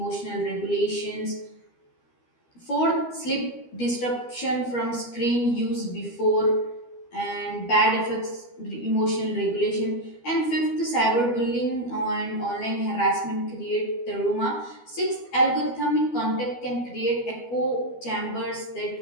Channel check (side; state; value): right; late; 12 ms